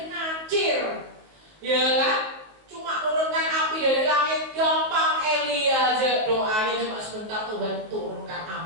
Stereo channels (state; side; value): late; left; 19 ms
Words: ngacir, ya kan? Cuma turunkan api dari langit gampang. Elia aja doanya cuma sebentar, Tuhan turunkan